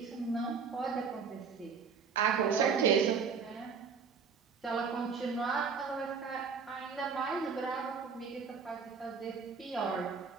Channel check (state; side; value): quieter; left; 5.8 dB